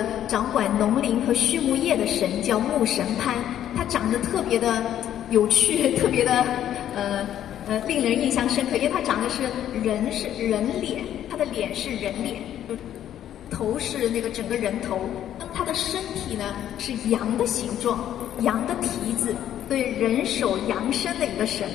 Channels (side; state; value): right; quieter; 11.1 dB